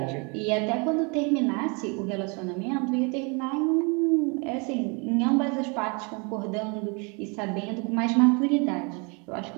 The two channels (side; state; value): left; quieter; 32.3 dB